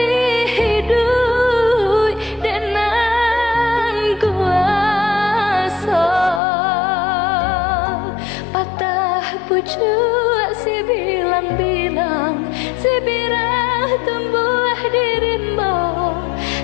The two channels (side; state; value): right; drops out; at 6.4 s